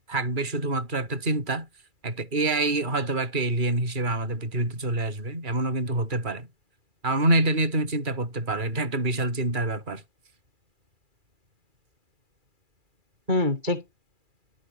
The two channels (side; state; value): left; late; 2.4 ms